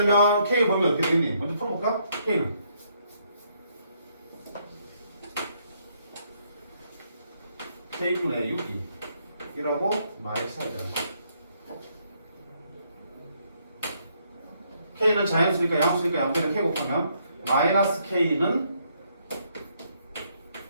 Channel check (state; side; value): inverted; both; correlation -0.72